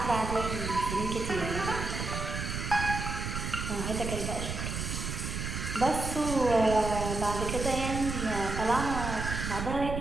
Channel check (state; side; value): noise; right; rumble, 4 dB below the sound